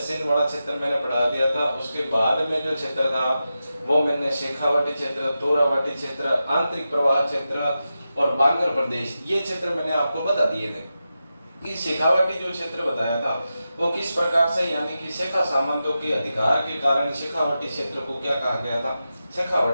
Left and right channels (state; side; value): inverted; both; correlation -0.91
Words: वाला क्षेत्र मैंने पढ़ा दिया था। उसके बाद में जो क्षेत्र था वो मैंने शेखावाटी क्षेत्र, तोरावाटी क्षेत्र, आंतरिक प्रवाह क्षेत्र और बांगर प्रदेश, ये क्षेत्र मैंने आपको बता दिए थे। कि शेखावाटी जो क्षेत्र बताया था वो किस प्रकार से, यानी कि शेखा सामंतों के अधिकार के कारण शेखावाटी क्षेत्र को क्या कहा गया था,